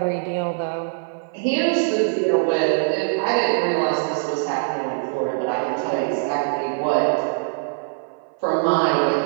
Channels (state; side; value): silent; left; 57 dB below the other